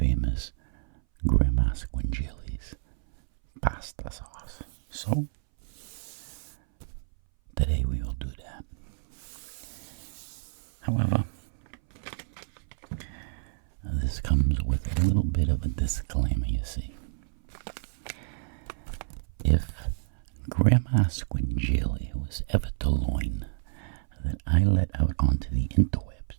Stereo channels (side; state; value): left; silent; 58 dB below the other